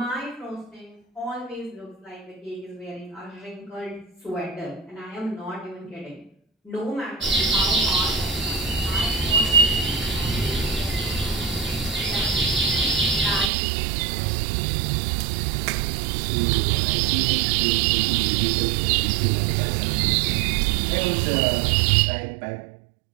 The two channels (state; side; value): drops out; left; at 13.5 s